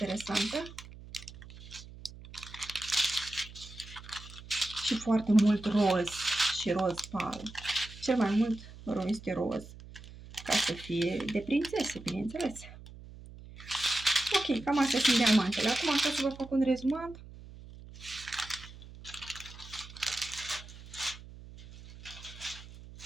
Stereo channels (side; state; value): right; noise; hum, 16 dB below the sound